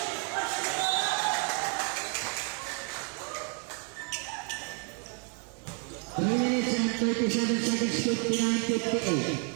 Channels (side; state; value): left; quieter; 37.6 dB